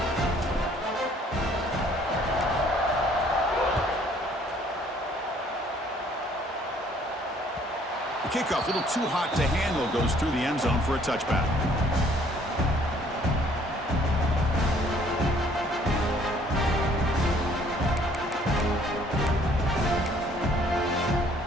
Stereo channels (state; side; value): normal; both; correlation 0.60